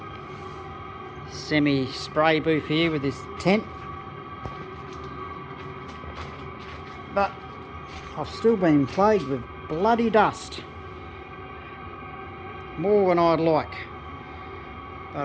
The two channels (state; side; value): identical; both; correlation 1.00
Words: semi spray booth here with this tent, but I've still been plagued with bloody dust, more than I'd like,